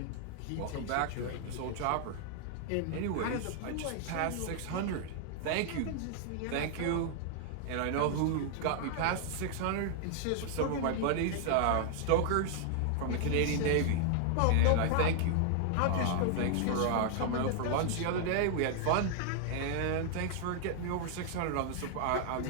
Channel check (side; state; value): both; different; correlation -0.01